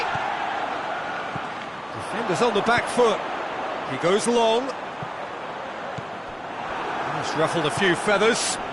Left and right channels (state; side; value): identical; both; correlation 1.00